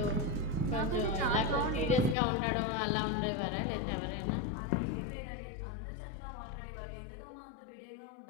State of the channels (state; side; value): drops out; right; at 2.1 s